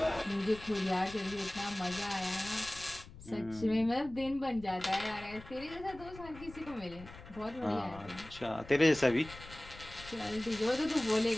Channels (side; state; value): left; noise; rumble, 17 dB below the sound